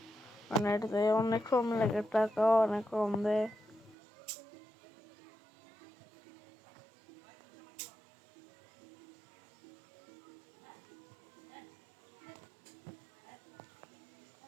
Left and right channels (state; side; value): drops out; left; at 4.0 s